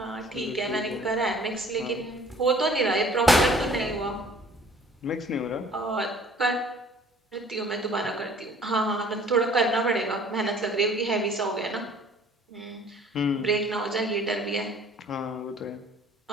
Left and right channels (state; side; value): normal; both; correlation 0.52